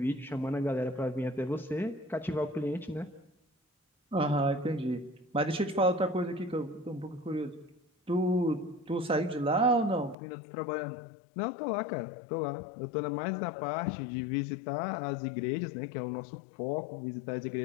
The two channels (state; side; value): drops out; right; at 10.2 s